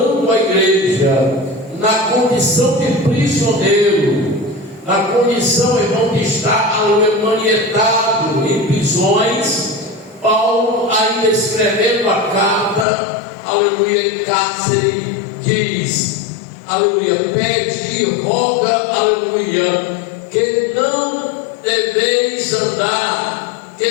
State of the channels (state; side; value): drops out; right; at 12.9 s